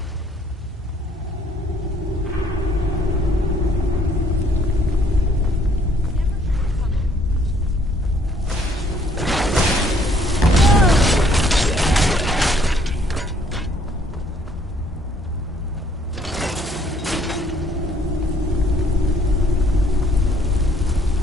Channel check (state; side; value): normal; both; correlation 0.63